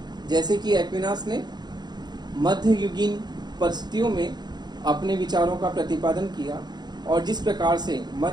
जैसे कि एक्विनास ने मध्ययुगीन परिस्थितियों में अपने विचारों का प्रतिपादन किया और जिस प्रकार से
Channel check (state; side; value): late; left; 0.20 ms